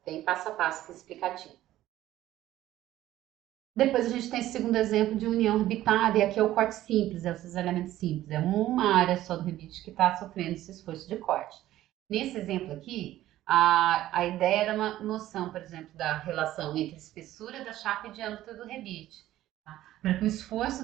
bem passo a passo aqui explicativo. Depois a gente tem esse segundo exemplo de união rebitada, e aqui é o corte simples, é o cisalhamento simples. É uma área só do rebite que está sofrendo esse esforço de corte. Nesse exemplo aqui, a ideia era uma noção, por exemplo, da relação entre a espessura da chapa e diâmetro do rebite. Tá? Para que o esforço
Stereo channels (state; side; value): quieter; left; 14.2 dB